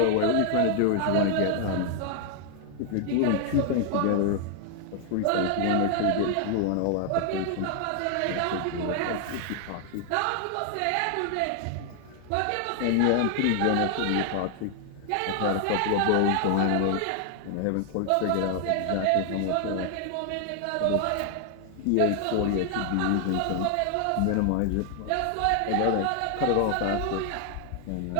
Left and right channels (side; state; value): both; different; correlation 0.00